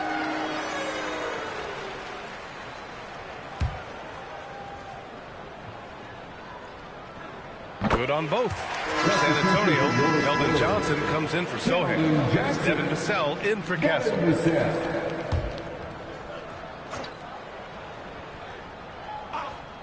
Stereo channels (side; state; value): both; identical; correlation 1.00